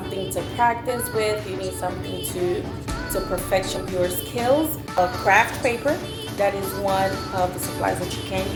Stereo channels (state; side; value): identical; both; correlation 1.00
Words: to practice with, you need something to perfect your skills. A craft paper, that is one of the supplies that you can